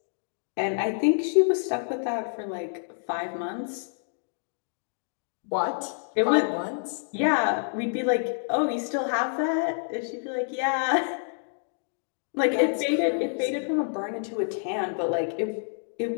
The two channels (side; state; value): right; silent; digital silence